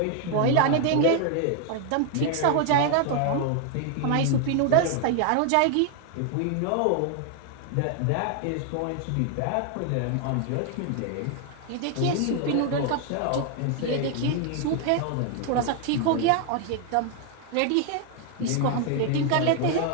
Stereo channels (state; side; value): different; both; correlation 0.00